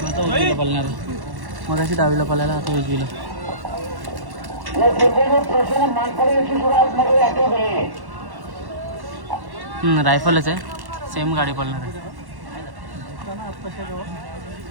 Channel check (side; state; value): left; late; 1.1 ms